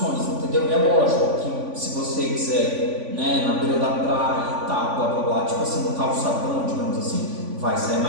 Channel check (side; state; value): left; late; 3.5 ms